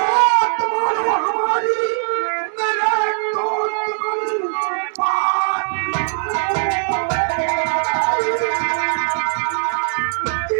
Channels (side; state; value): left; silent; digital silence